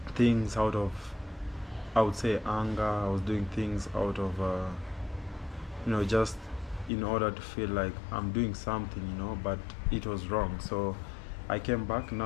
things out of, I would say, anger. I was doing things out of you know, just in order to feel like I'm doing something, you know, but it was wrong. So I came back.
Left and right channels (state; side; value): drops out; right; at 6.9 s